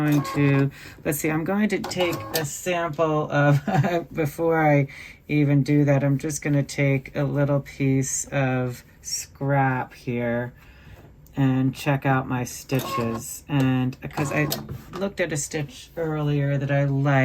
to, let's see, I'm going to take a sample of, before I even do that, I'm just going to take a little piece of scrap here and check out my stitches. And because I looked at a stitch earlier that I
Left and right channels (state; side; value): identical; both; correlation 1.00